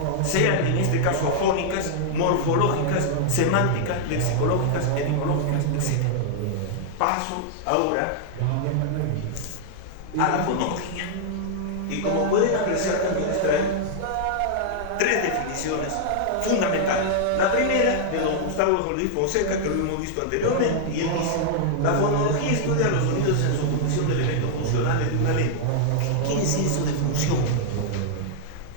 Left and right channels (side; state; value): both; different; correlation -0.01